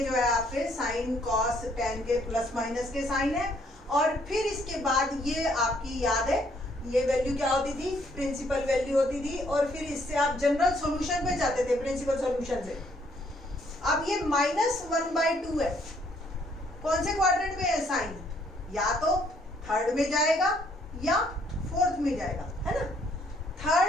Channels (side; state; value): both; normal; correlation 0.67